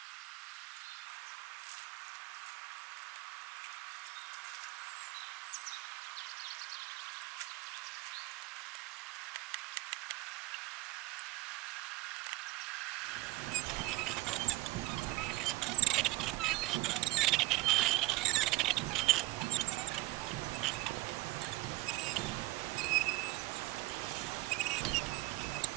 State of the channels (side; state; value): left; quieter; 20.4 dB